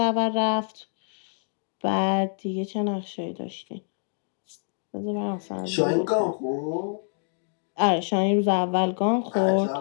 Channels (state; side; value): silent; right; digital silence